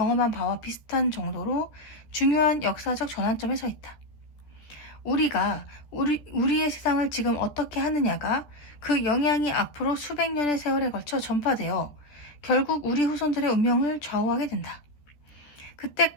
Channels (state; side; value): late; right; 14 ms